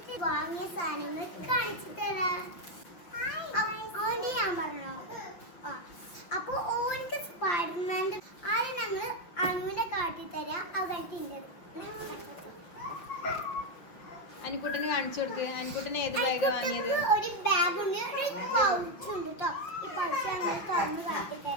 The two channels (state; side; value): late; right; 5.9 ms